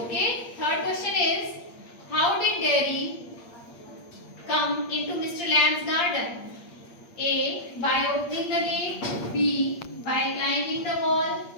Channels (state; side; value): late; right; 8.5 ms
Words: Okay. Third question is, how did Derry come into Mr. Lamb's garden? A. By opening the gate. B. By climbing the wall.